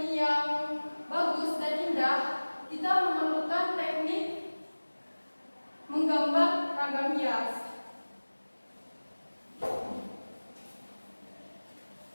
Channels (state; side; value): inverted; both; correlation -1.00